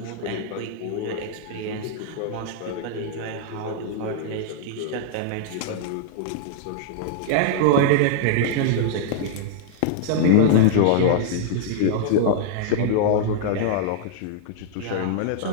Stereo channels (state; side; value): different; both; correlation -0.01